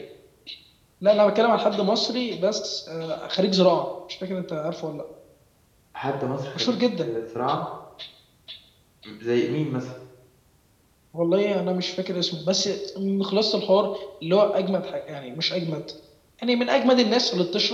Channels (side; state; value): both; identical; correlation 1.00